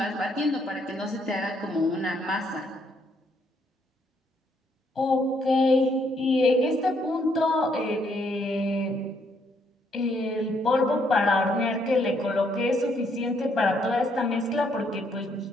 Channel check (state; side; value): normal; both; correlation 0.71